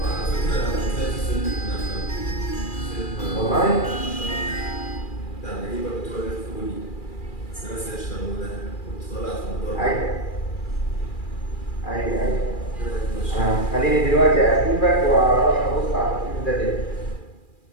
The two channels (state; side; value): late; right; 2.4 ms